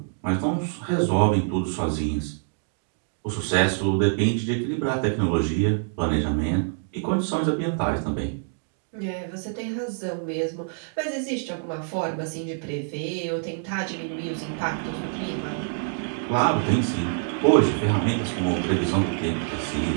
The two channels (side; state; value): left; silent; digital silence